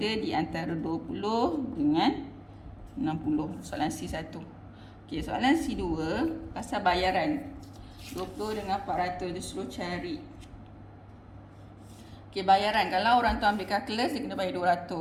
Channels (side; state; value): both; identical; correlation 1.00